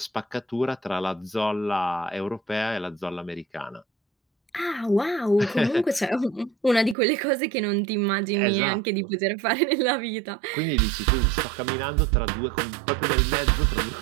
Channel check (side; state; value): left; drops out; at 7.0 s